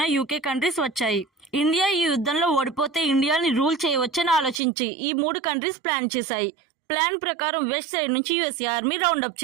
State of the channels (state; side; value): drops out; left; at 4.6 s